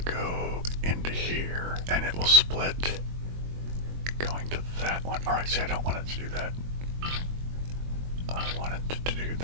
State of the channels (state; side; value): late; left; 22 ms